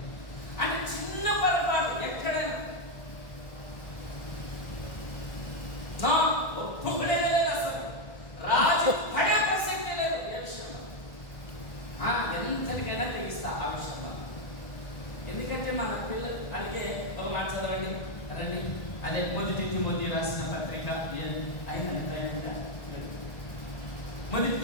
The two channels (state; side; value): late; right; 1.6 ms